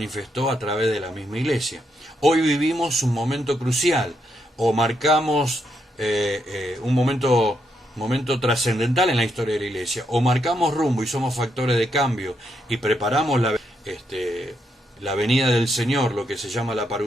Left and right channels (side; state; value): both; normal; correlation 0.79